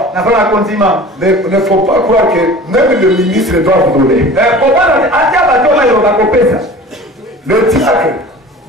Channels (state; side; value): normal; both; correlation 0.40